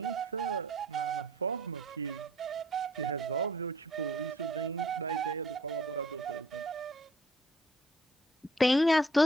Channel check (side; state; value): both; normal; correlation 0.58